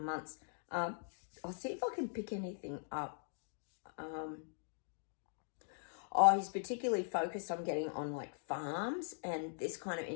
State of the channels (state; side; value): silent; right; digital silence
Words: I'll see if I can pick anything up. He's particularly focused on getting on like farms and this kind of